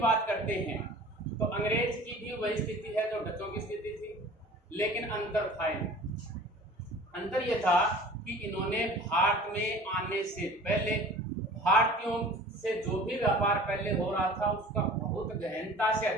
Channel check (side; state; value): both; normal; correlation 0.44